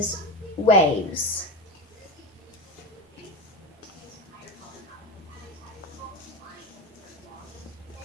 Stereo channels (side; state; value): both; normal; correlation 0.22